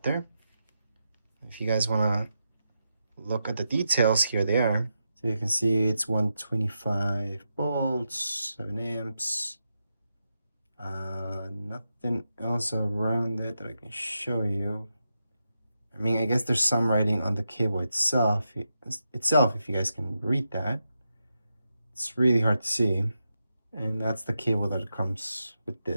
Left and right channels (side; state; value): both; inverted; correlation -0.87